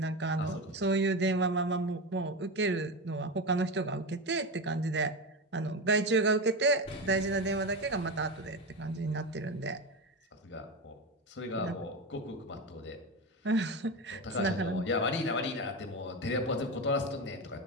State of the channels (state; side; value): normal; both; correlation 0.19